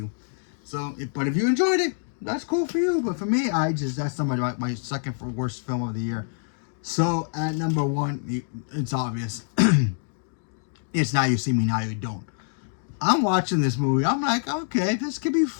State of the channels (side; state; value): right; silent; digital silence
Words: So, but if you enjoyed it, that's cool for you. But for me, that's my second for worst film of the year. So at number 1, it's obvious. It's Now You See Me, Now You Don't. I'm watching this movie. I'm like, okay, this could be